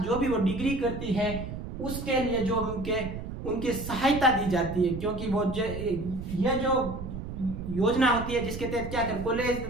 जो भी वो डिग्री करती है उसके लिए जो उनके सहायता दी जाती है, क्योंकि वो यह जो योजना होती है जिसके तहत क्या कर कॉलेज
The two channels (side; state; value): right; noise; rumble, 8 dB below the sound